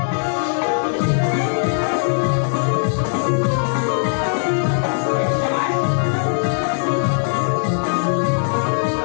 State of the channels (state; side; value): silent; right; digital silence